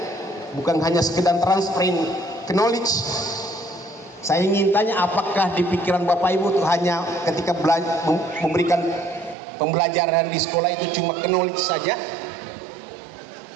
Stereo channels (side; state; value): left; drops out; at 9.3 s